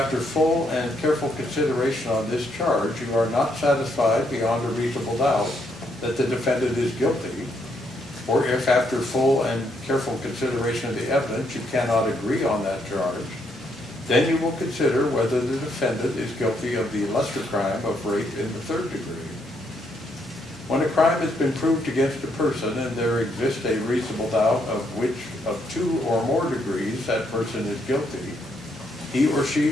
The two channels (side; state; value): both; normal; correlation 0.74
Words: full and careful consideration on this charge, you are not satisfied beyond a reasonable doubt that the defendant is guilty, or if, after full and careful consideration of the evidence, you cannot agree on that charge, then you will consider whether the defendant is guilty of the lesser crime of rape in the third degree. When a crime has been proved against a person and there exists a reasonable doubt of which of 2 or more degrees that person is guilty, he or